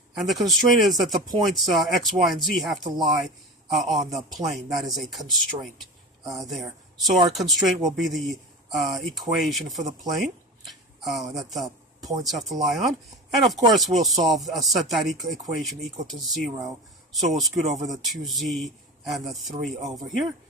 And the constraint is that the points x, y, and z have to lie on the plane. That is a constraint there. So our constraint will be the equation for the plane that the points have to lie on. And of course we'll set that equation equal to 0. So we'll scoot over the 2z and the 3 over here,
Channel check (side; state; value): both; normal; correlation 0.30